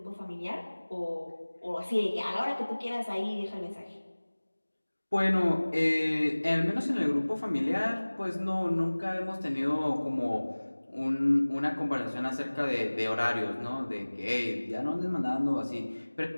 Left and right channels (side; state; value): both; inverted; correlation -1.00